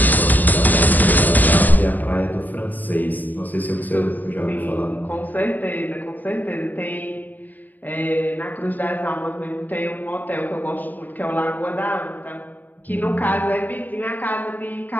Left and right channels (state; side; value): late; right; 0.085 ms